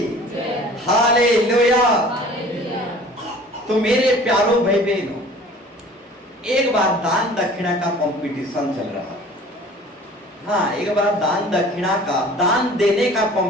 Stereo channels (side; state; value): both; normal; correlation 0.47